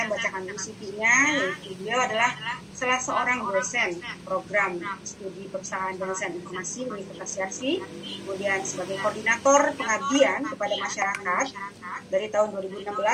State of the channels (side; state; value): both; identical; correlation 1.00